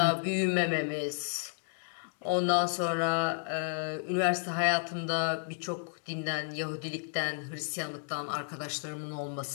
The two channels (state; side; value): silent; right; digital silence